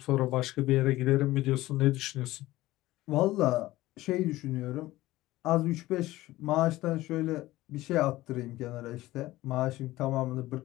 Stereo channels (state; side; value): quieter; right; 17.2 dB